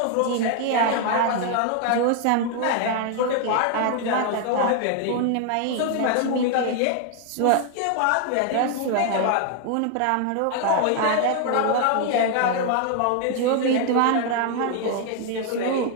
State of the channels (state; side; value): different; both; correlation 0.00